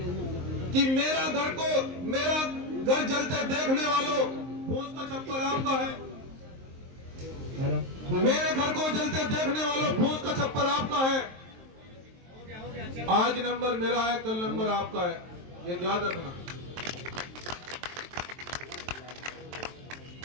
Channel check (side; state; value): left; late; 23 ms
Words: कि मेरा घर जलते देखने वालों, फूस का छप्पर आपका है। मेरे घर को जलते देखने वालों, फूस का छप्पर आपका है। आज नंबर मेरा है, कल नंबर आपका है, ये याद रखना।